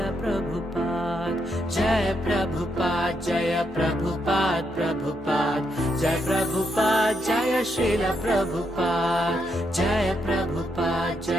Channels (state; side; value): normal; both; correlation 0.79